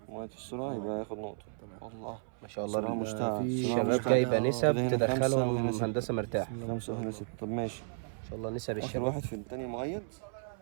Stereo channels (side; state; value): left; silent; 56 dB below the other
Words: مؤيد في السرعه يبقى ياخد نقطه. تمام. الله ما شاء صراحة الله مشتاق. في صراحة شباب مشتاق. جايبه نسب كده هنا خمسة تدخلهم وهنا ستة. هندسه مرتاح. 5 وهنا 6. طب ماشي. ان شاء الله نسب اخر الشباب. واحد في التاني مؤيد.